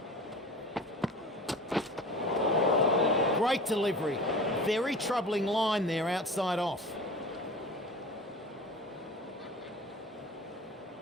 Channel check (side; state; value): both; normal; correlation 0.37